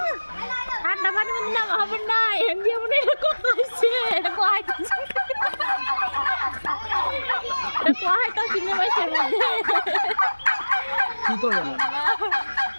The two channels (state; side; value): inverted; both; correlation -1.00